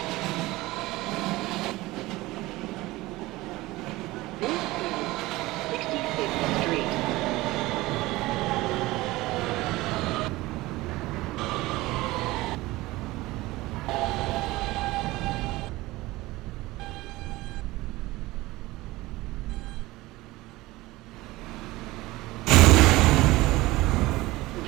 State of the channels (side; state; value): left; quieter; 19.4 dB